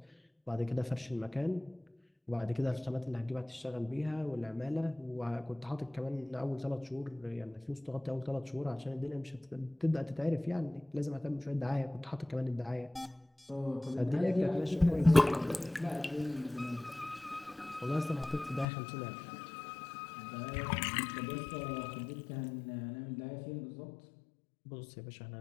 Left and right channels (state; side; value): drops out; right; at 18.7 s